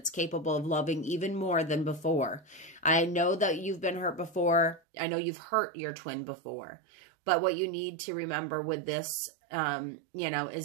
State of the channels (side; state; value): left; drops out; at 4.8 s